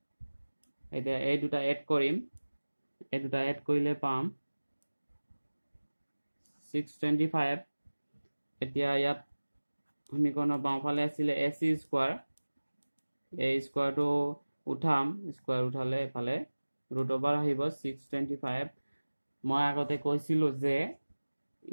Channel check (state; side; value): inverted; both; correlation -1.00